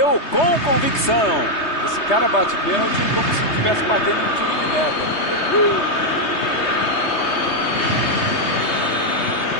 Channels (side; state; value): right; late; 3.2 ms